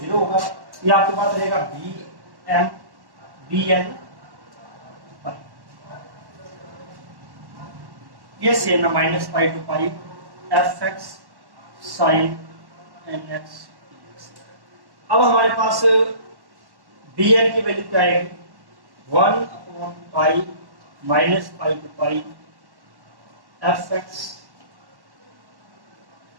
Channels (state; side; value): late; left; 1.1 ms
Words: 0 होगा। ये आपके पास रहेगा b m b n पाई। ये सेम है, minus pi to pi f x sine N x. अब हमारे पास बी एन की वैल्यू क्या आएगी, 1 upon pi minus pi to pi f x